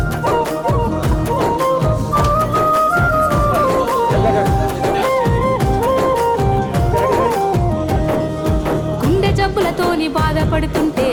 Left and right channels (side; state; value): both; identical; correlation 1.00